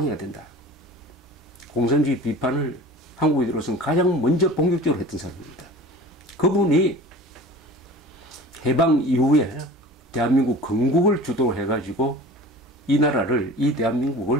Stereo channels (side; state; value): both; normal; correlation 0.40